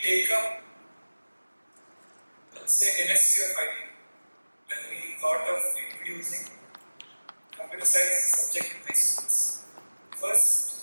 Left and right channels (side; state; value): both; inverted; correlation -1.00